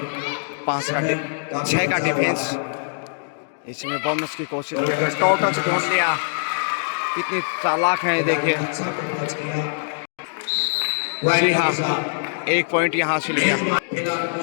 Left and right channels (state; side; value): silent; right; digital silence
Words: 6 का डिफेंस। इसमें बोनस की कोशिश कर रहे, टोटल से ढूंढ लिया। कितनी चालाक है देखिए। जी हाँ, 1 पॉइंट यहाँ से लिया।